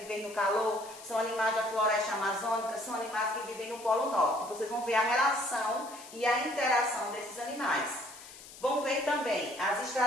no calor, são animais da floresta amazônica, são animais que vivem no Polo Norte. Vocês vão ver a relação e a interação desses animais. Vão ver também as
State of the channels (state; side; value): noise; left; hiss, 17 dB below the sound